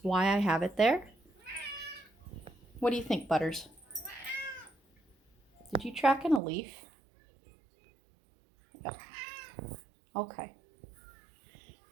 why I have it there. What do you think, Butters? Did you track in a leaf? Yep. Okay.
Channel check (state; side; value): drops out; left; at 6.4 s